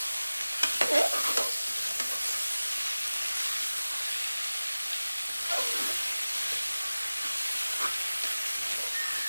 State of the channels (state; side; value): inverted; both; correlation -0.97